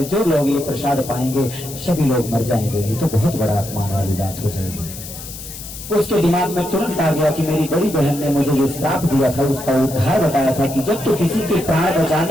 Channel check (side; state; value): left; noise; hiss, 12 dB below the sound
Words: जो लोग ये प्रसाद पाएंगे सभी लोग मर जाएंगे, ये तो बहुत बड़ा अपमान वाली बात हो जाएगी। उसके दिमाग में तुरंत आ गया कि मेरी बड़ी बहन ने मुझे जो श्राप दिया था उसका उद्धार बताया था कि जब तू किसी के प्राण